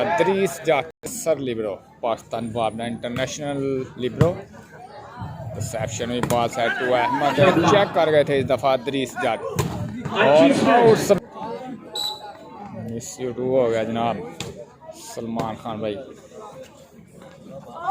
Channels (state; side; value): identical; both; correlation 1.00